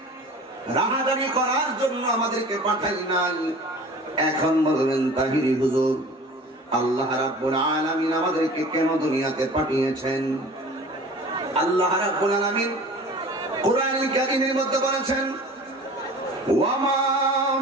রাহাজানি করার জন্য আমাদেরকে পাঠাই নাই। এখন বলবেন তাহিরি হুজুর, আল্লাহ রাব্বুল আলামিন আমাদেরকে কেন দুনিয়াতে পাঠিয়েছেন? আল্লাহ রাব্বুল আলামিন কোরআনুল কারীমের মধ্যে বলেছেন, ওয়ামা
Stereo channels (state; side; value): normal; both; correlation 0.42